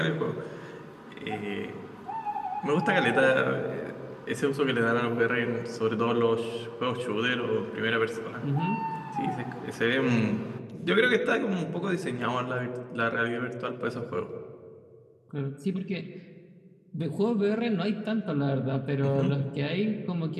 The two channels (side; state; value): both; identical; correlation 1.00